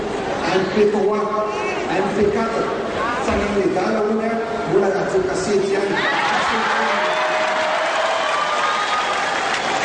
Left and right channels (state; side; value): identical; both; correlation 1.00